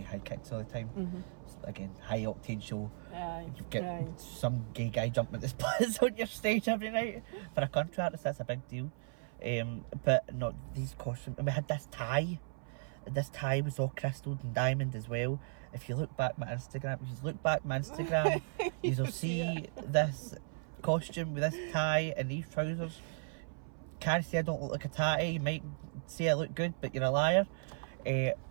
high kicks all the time. So again, high octane show. You get some gay guy jumping at the splits on your stage every night for a contract. That's a big deal. But not these costumes. And we had this tie. This tie was all crystalled and diamond as well. If you look back my Instagram, you'll see this costume with this tie and these trousers. Can't say I don't look like a tatty. You might say I look good, but you're a liar.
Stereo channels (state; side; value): silent; left; 54 dB below the other